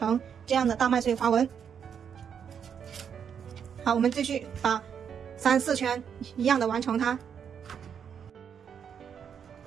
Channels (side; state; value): left; quieter; 7.7 dB